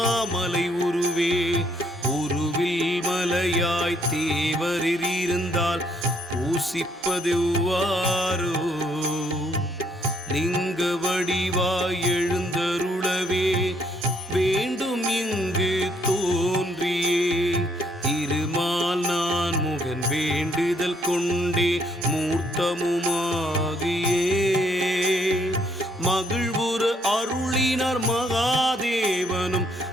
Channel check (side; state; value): both; normal; correlation 0.69